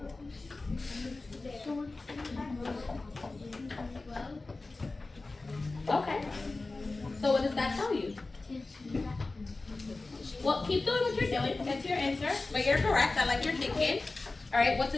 Okay. So what does that tell you? Well, keep doing what you're doing. That's your answer. But you're correct. I like your thinking. All right. What's a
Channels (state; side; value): quieter; right; 3.4 dB